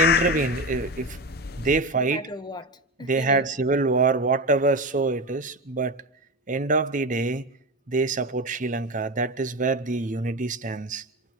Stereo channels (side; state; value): both; normal; correlation 0.20